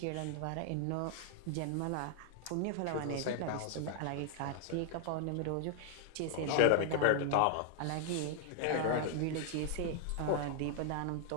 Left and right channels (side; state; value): both; different; correlation 0.00